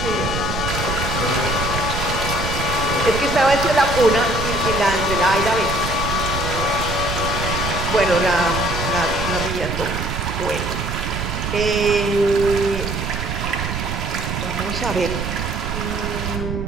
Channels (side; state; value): right; noise; rumble, 4 dB below the sound